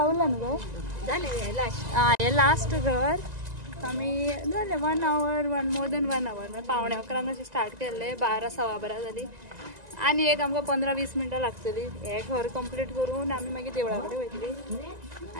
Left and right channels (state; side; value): late; left; 1.9 ms